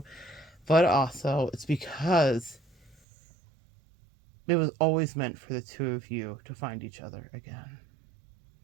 but also it's because it was always meant for the two of you to find each other again.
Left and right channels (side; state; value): left; drops out; at 3.0 s